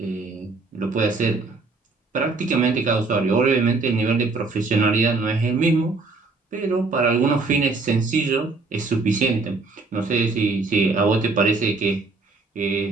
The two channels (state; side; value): quieter; left; 3.8 dB